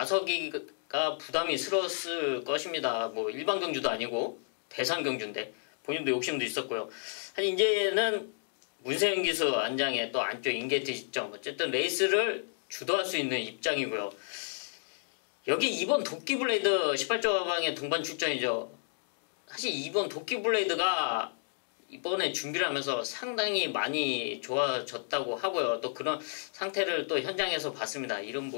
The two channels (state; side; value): silent; right; digital silence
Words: 부담이스러웠을 것입니다. 뭐 일반 경주도 아니고 대상경주인데 본인도 욕심도 있었고요. 사실 이제는 문세영 기수 안장에 또 안쪽 인게이트 시점, 어쨌든 레이스를 주도할 수 있는 입장이고요. 여기 2번 도끼블레이드 18조 가방의 동반 출전이죠. 사실 2번 도끼블레이드가 이번에 준비를 하면서 상당히 많이 좋아졌다고 하고요. 또 그런 상태를 또 현장에서 봤습니다. 이런